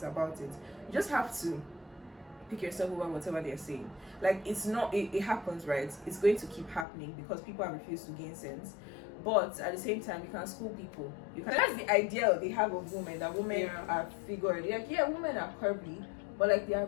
about it. You just have to pick yourself over whatever they're saying. Like it's not it happens, right? It's going to keep happening because people have refused to gain sense. But at the same time, you can school people. That's the ideal they have of women. That women are figured. Like women are curvy, but like they are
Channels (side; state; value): right; drops out; at 6.9 s